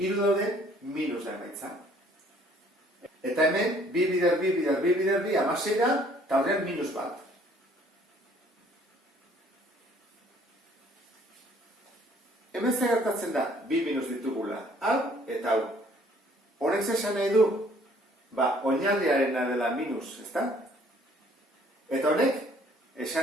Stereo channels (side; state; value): both; normal; correlation 0.59